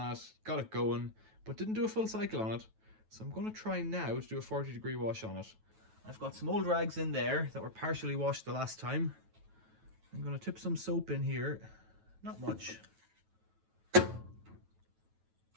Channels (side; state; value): left; late; 9.2 ms